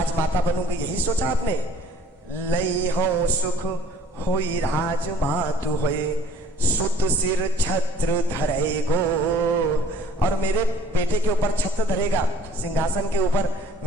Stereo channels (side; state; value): both; normal; correlation 0.52